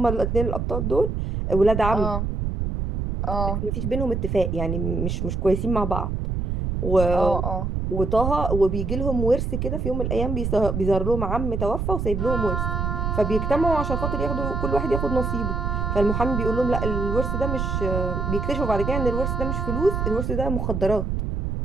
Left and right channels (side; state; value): right; noise; rumble, 1 dB below the sound